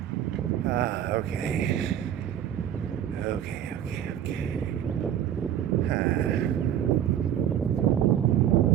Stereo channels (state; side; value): quieter; left; 10.3 dB